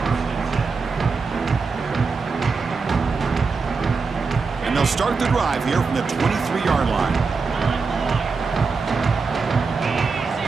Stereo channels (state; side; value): quieter; left; 4.7 dB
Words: And they'll start the drive here from the 23-yard line.